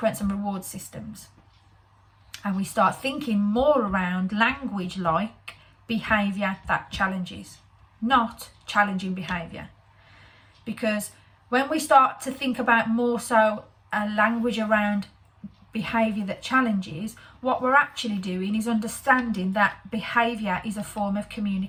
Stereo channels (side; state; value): both; identical; correlation 1.00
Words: and reward systems. And we start thinking more around language like behaviour that challenges, not challenging behaviour. Because when we start to think about more so a language around behaviour that challenges, what we're actually doing is understanding that behaviour is a form of